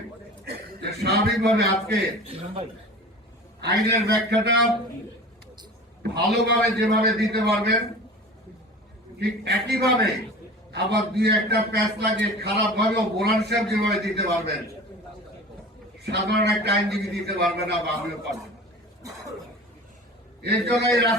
যে স্বাভাবিকভাবে আজকে আইনের ব্যাখ্যাটা ভালোভাবে যেভাবে দিতে পারবেন ঠিক একইভাবে আবার দুই একটা প্যাচ লাগে খারাপ ভাবেও বোলান সাহেব যেভাবে দিতে পারবেন সাধারণ একটা আইনজীবী দিতে পারবে না বা আমিও পারবো। এর জন্য এই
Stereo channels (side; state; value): both; normal; correlation 0.38